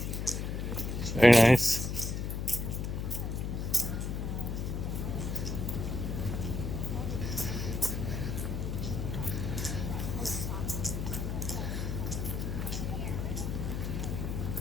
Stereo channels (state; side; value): noise; left; hum, 2 dB below the sound